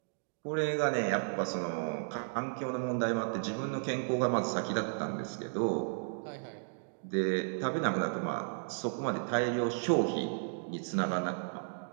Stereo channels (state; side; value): silent; left; digital silence